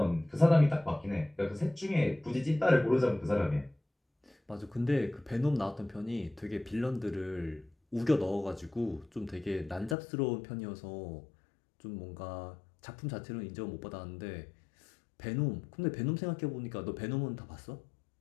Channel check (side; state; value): right; drops out; at 10.0 s